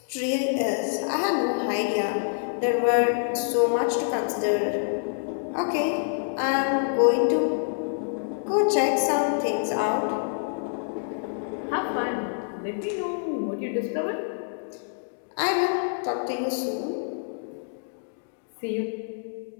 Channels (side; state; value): right; silent; digital silence